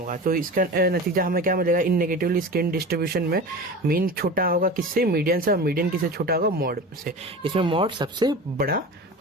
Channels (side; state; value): both; normal; correlation 0.32